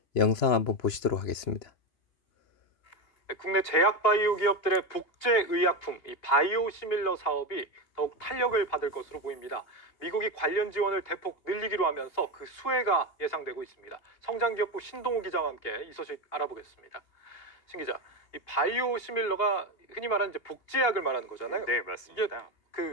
영상 한번 보시도록 하겠습니다. 국내 제약 바이오 기업들의 복제 의약품, 이 바이오시밀러 사업이 더욱 탄력을 받을 것으로 보입니다. 미국이 관련 지원을 대폭 늘리기로 하면서 그 수혜가 예상되고 있습니다. 성장기업부 신동우 기자와 함께 이 소식 알아보겠습니다. 신 기자, 이 바이오시밀러가 흔히 말하는 이제 복제약을 말하는 거잖아요. 네, 이게 맞습니다.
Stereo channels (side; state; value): right; late; 2.8 ms